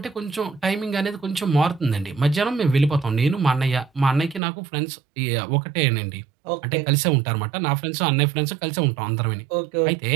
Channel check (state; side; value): drops out; left; at 4.4 s